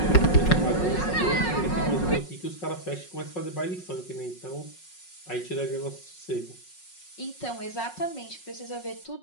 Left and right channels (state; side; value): late; right; 5.5 ms